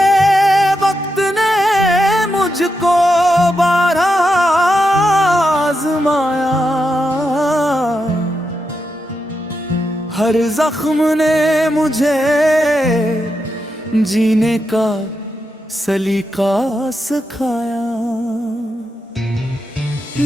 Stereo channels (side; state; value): both; normal; correlation 0.85